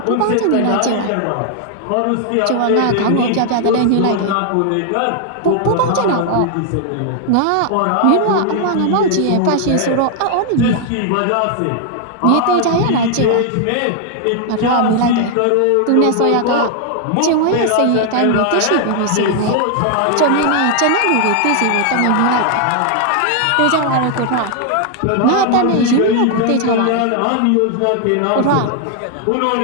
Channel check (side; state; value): both; different; correlation 0.00